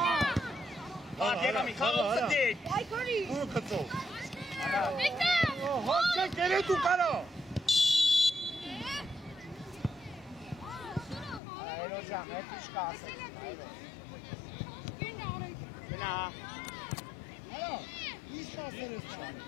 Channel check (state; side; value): drops out; right; at 11.4 s